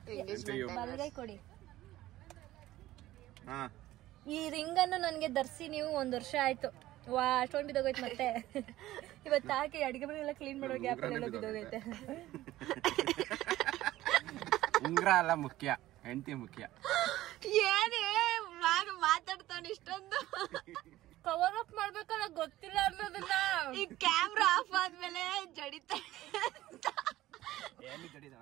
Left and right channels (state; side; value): quieter; left; 15.6 dB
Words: ಬಲಗೈ ಕೊಡಿ. ಈ ರಿಂಗ್ ಅನ್ನು ನನ್ಗೆ ಧರಿಸಿ ನೀವು 1 ವರ್ಷ ಆಯ್ತು. ಅಷ್ಟೊಂದು ಬಿದ್ದೋಗೈತೆ. ಮತ್ತೆ ಇವತ್ತು ಹಾಕಿ ಅಡಿಗೆ ಮನೆಲ್ಲ ಕ್ಲೀನ್ ಮಾಡೋ ಗ್ಯಾಪ್ ಎಲ್ಲ ಬಿದ್ದೋಗೈತೆ. ಉಂಗ್ರ ಅಲ್ಲ ಮುಖ್ಯ, ಹೆಂಡತಿ ಮುಖ್ಯ. ಏನೇ ಮಾತಾಡ್ತಾನೆ ಇಷ್ಟೊಂದು. ಕವರ್ ಅಪ್ ಮಾಡ್ಬೇಕಲ್ಲ, ಗೊತ್ತಿಲ್ಲ ಅನ್ನೋದನ್ನ. ಈ ಕ್ಯಾಮ್ರಾ ಆಫ್ ಆದ್ಮೇಲೆ ಜಡಿತ